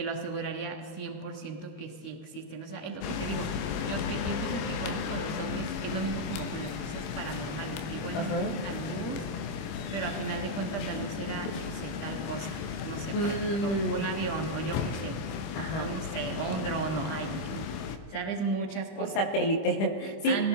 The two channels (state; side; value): late; right; 25 ms